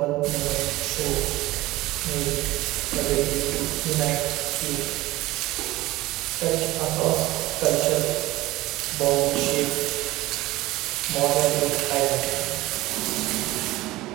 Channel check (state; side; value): quieter; left; 18.4 dB